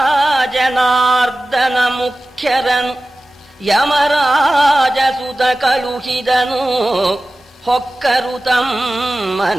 ಜನಾರ್ದನ ಮುಖ್ಯರನು ಯಮರಾಜಸುತ ಕಳುಹಿದನು ಹೊಕ್ಕರು ತಮ್ಮ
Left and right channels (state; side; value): normal; both; correlation 0.96